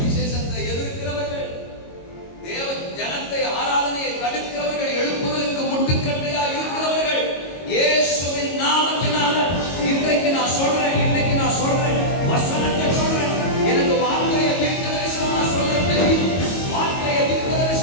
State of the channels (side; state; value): right; late; 22 ms